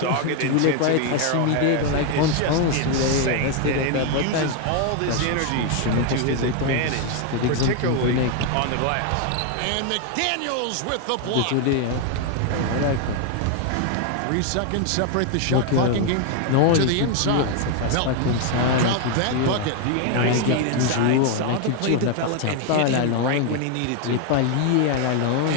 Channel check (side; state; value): both; different; correlation 0.01